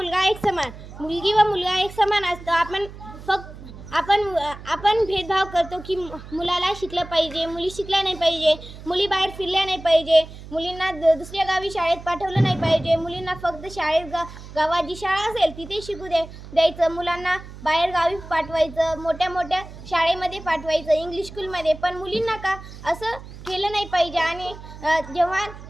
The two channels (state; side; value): noise; right; hum, 15 dB below the sound